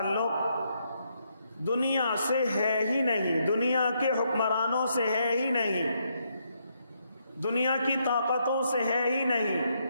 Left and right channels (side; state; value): both; inverted; correlation -0.76